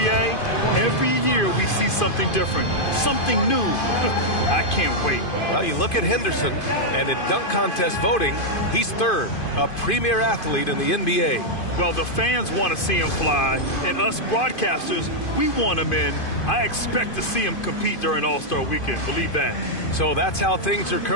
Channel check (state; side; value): late; right; 2.5 ms